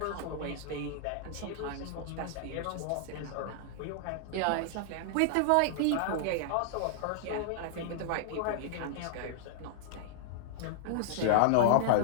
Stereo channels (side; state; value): both; different; correlation -0.01